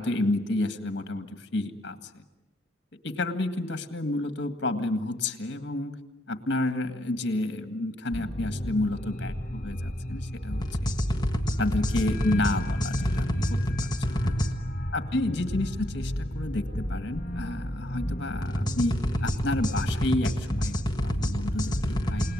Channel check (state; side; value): normal; both; correlation 0.76